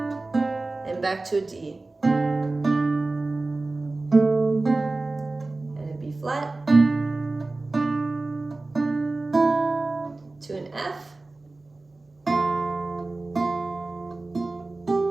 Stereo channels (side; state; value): left; quieter; 3.2 dB